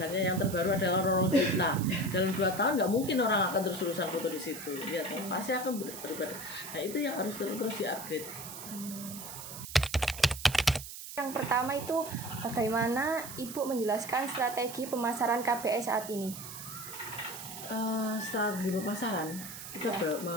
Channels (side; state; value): right; noise; hiss, 11 dB below the sound